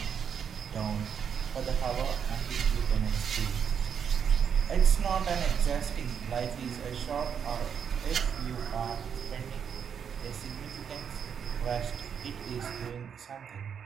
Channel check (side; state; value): left; quieter; 7.5 dB